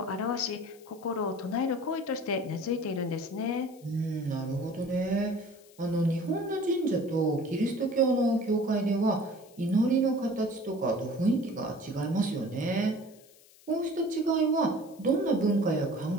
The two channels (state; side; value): noise; left; hiss, 26 dB below the sound